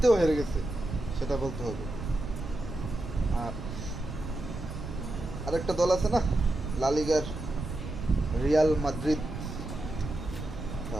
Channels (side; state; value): right; noise; rumble, 8 dB below the sound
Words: হেরে গেছে, সেটা বলতে হবে। আর আরেকটা দল আছে না, লা লিগার রিয়াল মাদ্রিদ।